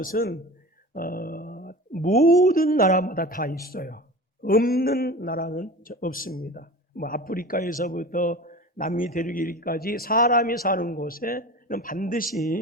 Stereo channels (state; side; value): normal; both; correlation 0.35